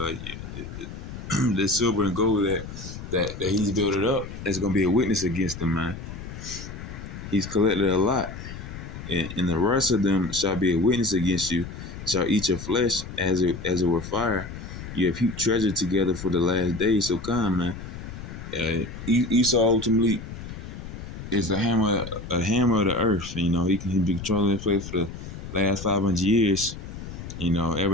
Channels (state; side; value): noise; left; rumble, 10 dB below the sound